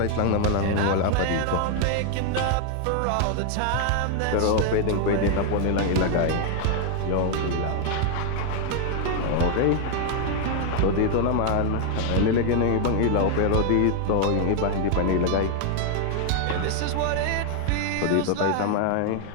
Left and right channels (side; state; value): both; different; correlation 0.00